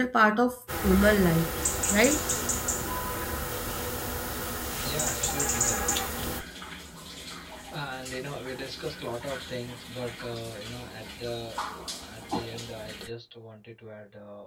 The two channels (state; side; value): identical; both; correlation 1.00